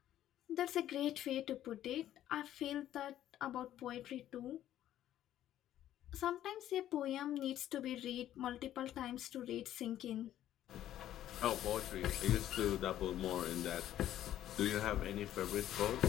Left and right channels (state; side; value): quieter; right; 12.2 dB